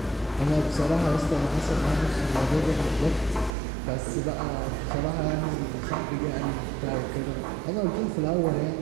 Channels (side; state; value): left; drops out; at 3.5 s